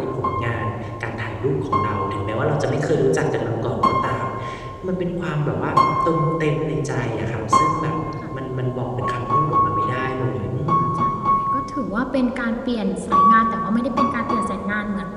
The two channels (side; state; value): both; identical; correlation 1.00